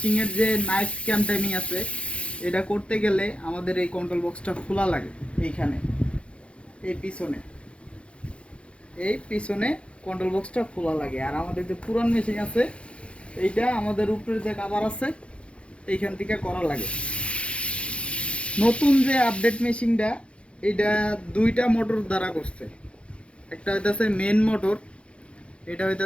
যে নাইফ ক্যাম টাইমিং আছে, এটা করতে গেলে আমাদের এই কন্ট্রোল বক্সটা খোলা লাগে। এইখানে এই পিছনে কন্ট্রোল বক্সটা খোলা লাগে। আর আমাদের যে পুরান মেশিন আছে, এইটা আমাদের উপরে যে কভার আছে এইখান থেকে করা লাগে। নতুন যে আপডেট মেশিনটা, এটা দুইটা মোটর দ্বারা করছে। একটা হইতেছে মেন মোটর, এটা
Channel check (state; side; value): late; right; 0.060 ms